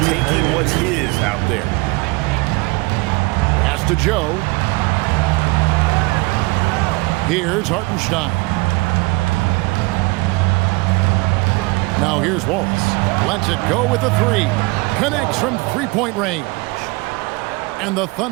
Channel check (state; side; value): quieter; left; 25.3 dB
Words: taking what's his out there. Pass to Joe. Here's Hartenstein. Now here's Wallace. Lets it go with a 3. Connects from three-point range. And the